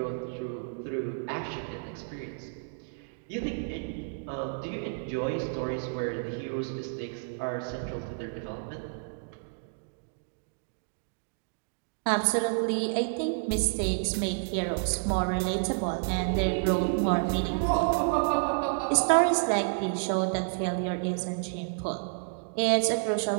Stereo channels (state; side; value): silent; left; digital silence